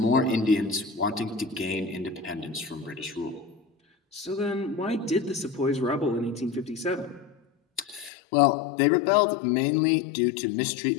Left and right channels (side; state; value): right; drops out; at 8.1 s